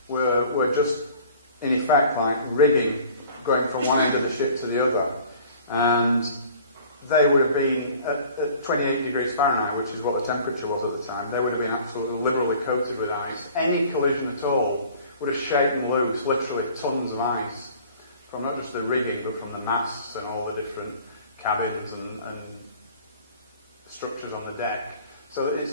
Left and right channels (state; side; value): inverted; both; correlation -0.49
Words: were just, in effect, like rigging going from one end of the ship to the other. And they would have been, at 28 degrees Fahrenheit, which is what the temperature was at the time, they would have been absolutely liberally coated with ice. Any collision at all would have shaken loose literally tons of ice from not just the rigging, but from the masts and all the different cabins and structures on the deck. So it's